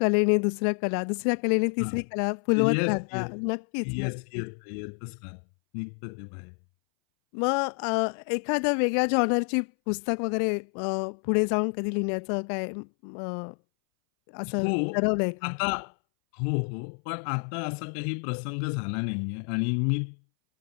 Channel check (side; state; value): right; silent; 59 dB below the other